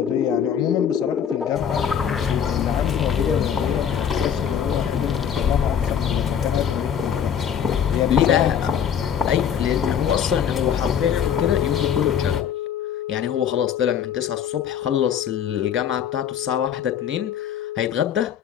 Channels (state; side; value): quieter; right; 8.5 dB